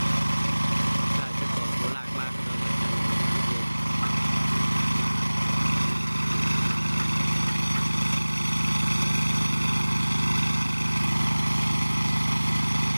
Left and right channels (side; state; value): both; inverted; correlation -1.00